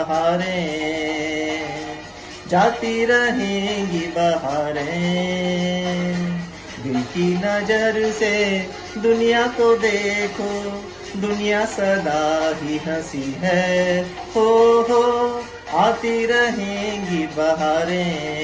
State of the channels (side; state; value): both; identical; correlation 1.00